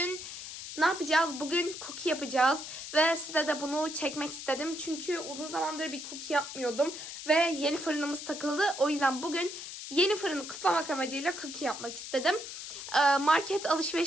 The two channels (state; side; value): noise; left; hiss, 9 dB below the sound